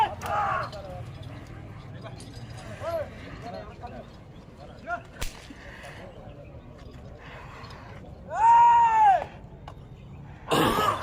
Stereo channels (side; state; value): both; identical; correlation 1.00